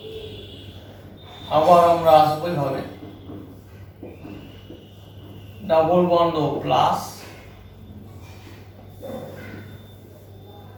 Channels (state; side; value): identical; both; correlation 1.00